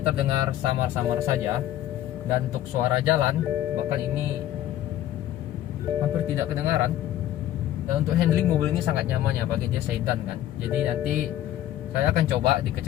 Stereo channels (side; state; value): right; quieter; 12.8 dB